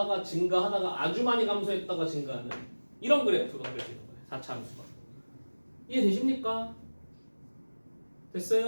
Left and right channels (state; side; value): inverted; both; correlation -1.00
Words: 증가하다가 아주 많이 감소했다가 증가하는 이런 그래프가 그려지는 거예요. 4차 함수가. 이해되십니까?